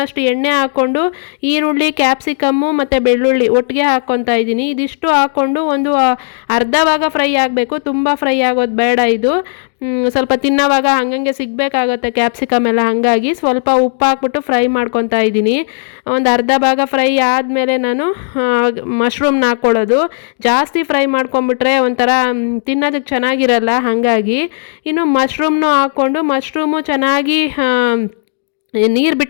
ಎಣ್ಣೆ ಹಾಕ್ಕೊಂಡು ಈರುಳ್ಳಿ, ಕ್ಯಾಪ್ಸಿಕಮ್ಮು ಮತ್ತು ಬೆಳ್ಳುಳ್ಳಿ ಒಟ್ಟಿಗೆ ಹಾಕ್ಕೊತಾ ಇದ್ದೀನಿ. ಇದಿಷ್ಟು ಹಾಕ್ಕೊಂಡು ಒಂದು ಅರ್ಧ ಭಾಗ ಫ್ರೈ ಆಗಬೇಕು, ತುಂಬ ಫ್ರೈ ಆಗೋದು ಬೇಡ ಇದು. ಸ್ವಲ್ಪ ತಿನ್ನೋವಾಗ ಹಂಗಂಗೆ ಸಿಗಬೇಕಾಗತ್ತೆ ಕ್ಯಾಪ್ಸಿಕಮ್ ಎಲ್ಲ, ಹಾಗಾಗಿ ಸ್ವಲ್ಪ ಉಪ್ಪು ಹಾಕ್ಬಿಟ್ಟು ಫ್ರೈ ಮಾಡ್ಕೊತಾ ಇದ್ದೀನಿ. ಒಂದು ಅರ್ಧ ಭಾಗ ಫ್ರೈ ಆದಮೇಲೆ ನಾನು ಮಶ್ರೂಮ್ನ ಹಾಕ್ಕೊಳ್ಳೋದು. ಜಾಸ್ತಿ ಫ್ರೈ ಮಾಡ್ಕೊಂಬಿಟ್ರೆ ಒಂಥರ ತಿನ್ನೋದಕ್ಕೆ ಚೆನ್ನಾಗಿರಲ್ಲ, ಹಾಗಾಗಿ ಇನ್ನು ಮಶ್ರೂಮ್ನು ಹಾಕ್ಕೊಂಡು ಮಶ್ರೂಮು ಚೆನ್ನಾಗಿ ನೀರು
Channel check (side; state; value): right; silent; digital silence